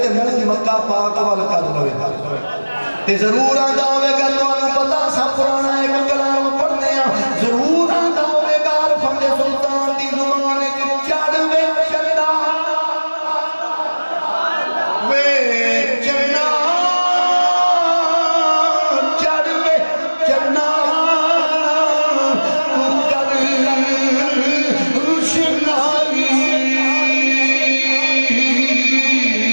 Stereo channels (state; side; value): inverted; both; correlation -1.00